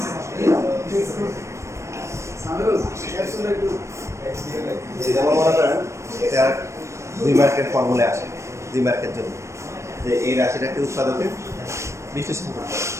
যেমন মনে করেন এটা 2 মার্কের ফর্মুলা আসে 2 মার্কের জন্য যে এই রাশিটাকে উৎপাদকে বিশ্লেষণ করতে হবে।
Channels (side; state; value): left; late; 0.14 ms